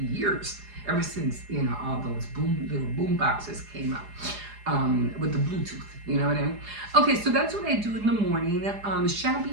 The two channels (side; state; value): left; late; 4.9 ms